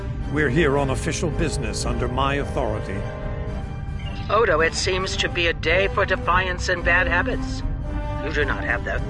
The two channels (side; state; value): both; identical; correlation 1.00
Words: We're here on official business under my authority. Odo, it seems to be a day for defiance and bad habits. You do not have the